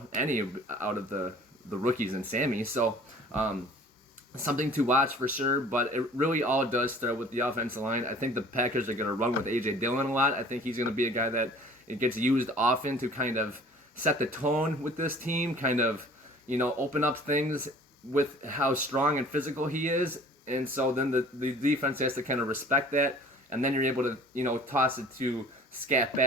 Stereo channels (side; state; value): both; normal; correlation 0.49